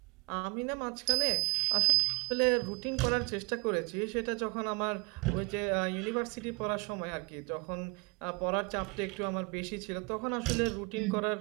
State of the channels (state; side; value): quieter; left; 30.3 dB